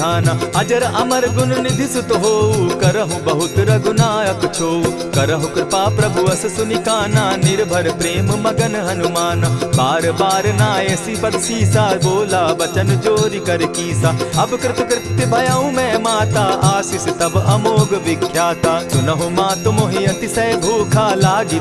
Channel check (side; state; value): both; identical; correlation 1.00